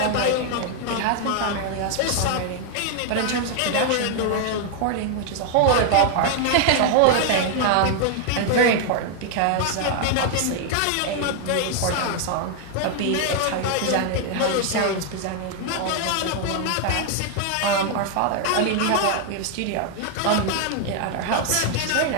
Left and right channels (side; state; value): both; different; correlation 0.00